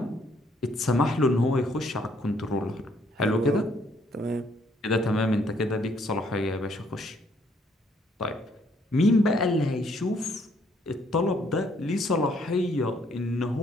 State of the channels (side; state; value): both; normal; correlation 0.67